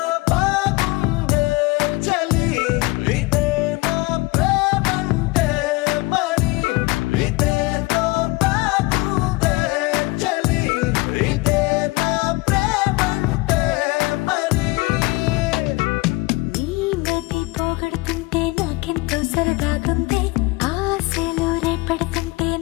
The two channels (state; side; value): quieter; right; 23.0 dB